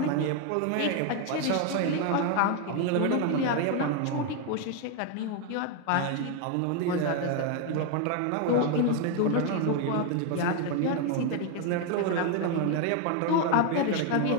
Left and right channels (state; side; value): different; both; correlation 0.01